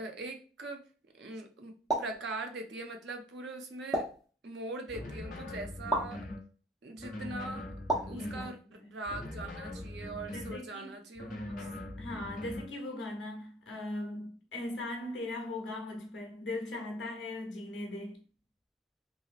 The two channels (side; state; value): both; normal; correlation 0.50